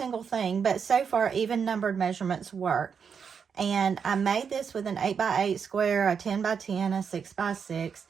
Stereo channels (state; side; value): quieter; left; 6.6 dB